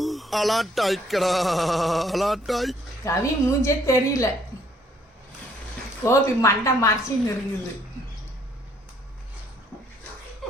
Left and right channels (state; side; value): normal; both; correlation 0.65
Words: அலாட்டாய்க்கடா அலாட்டாய். கவி மூஞ்சே தெரியல, கோபி மண்டை மறைச்சின்னு இருக்குது.